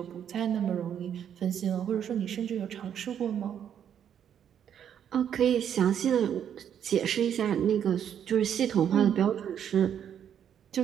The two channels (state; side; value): quieter; left; 9.0 dB